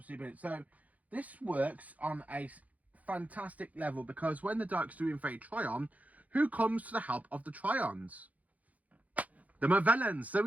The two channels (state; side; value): late; left; 0.074 ms